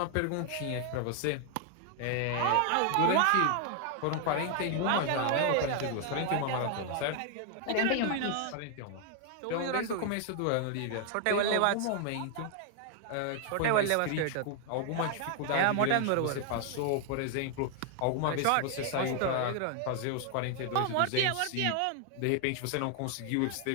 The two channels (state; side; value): different; both; correlation 0.00